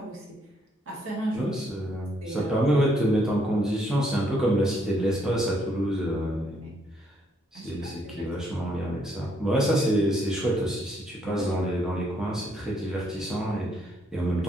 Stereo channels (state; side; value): normal; both; correlation 0.71